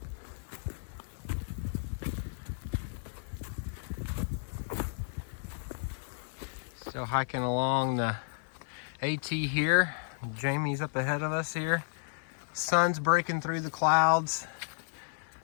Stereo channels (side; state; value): right; silent; 56 dB below the other